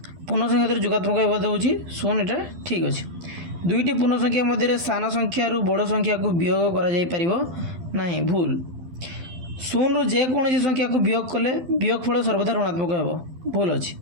पूर्ण संख्या क्षेत्र जोगात्मक एवं होची शून्य एटा ठीक अच्छे। दुईटी पूर्ण संख्या मध्य सान संख्या बड़ संख्या को वियोग करा जाई परिबो नहीं भूल। शून्य रु जेकोसी संख्या को वियोग कले वियोगफल सर्वदा ऋणात्मक हेबो भूल अच्छी।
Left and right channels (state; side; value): late; left; 12 ms